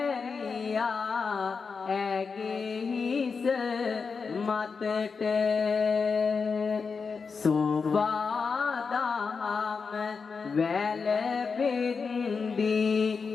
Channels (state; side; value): quieter; right; 5.2 dB